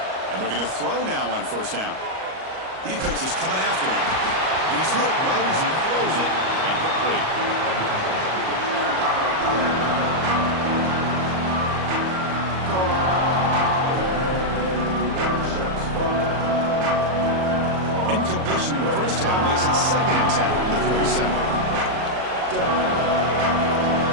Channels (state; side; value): late; left; 38 ms